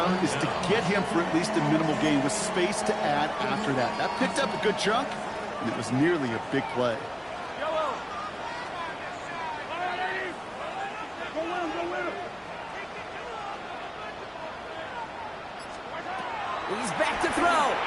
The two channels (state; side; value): identical; both; correlation 1.00